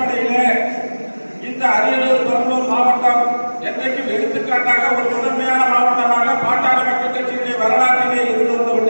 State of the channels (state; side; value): inverted; both; correlation -1.00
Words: இந்த அரியலூர் பெரம்பலூர் மாவட்டம் என்றைக்கும் எடுத்துக்காட்டாக ஒரு முதன்மையான மாவட்டமாக பாட்டாளி மக்கள் கட்சியினுடைய வரலாற்றிலே இருந்து வந்து